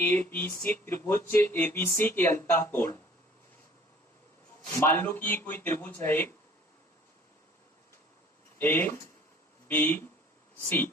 बी सी त्रिभुज एबीसी के अंतः कोण। मान लो कि ये कोई त्रिभुज है ए बी सी,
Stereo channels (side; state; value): both; normal; correlation 0.52